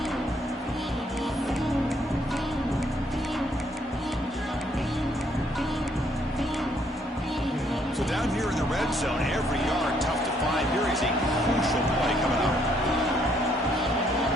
Down here in the red zone, every yard tough to find. Here is a crucial play coming up.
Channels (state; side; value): normal; both; correlation 0.69